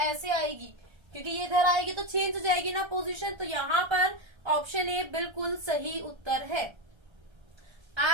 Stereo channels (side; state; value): left; late; 1.3 ms